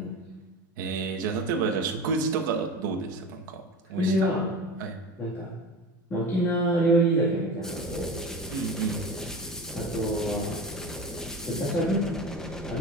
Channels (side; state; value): both; normal; correlation 0.30